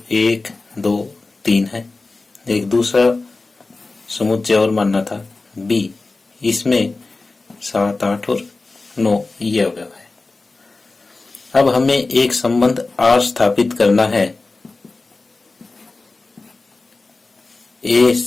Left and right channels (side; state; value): right; quieter; 3.5 dB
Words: 1 2 3 है। एक दूसरा समुच्चय और मानना था बी, इसमें 7 8 और 9 ये अवयव है। अब हमें एक संबंध आर स्थापित करना है ए